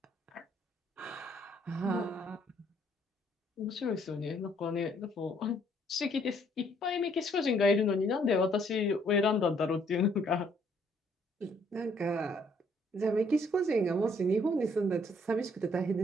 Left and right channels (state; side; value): normal; both; correlation 0.65